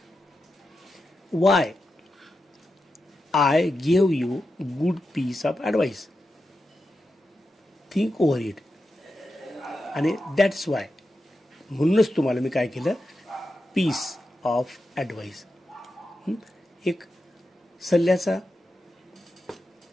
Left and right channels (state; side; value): normal; both; correlation 0.89